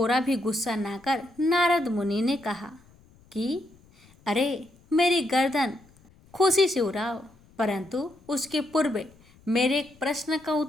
भी गुस्सा ना कर नारद मुनि ने कहा कि अरे, मेरी गर्दन खुशी से उड़ाओ, परंतु उसके पूर्व मेरे एक प्रश्न का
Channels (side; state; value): left; noise; rumble, 28 dB below the sound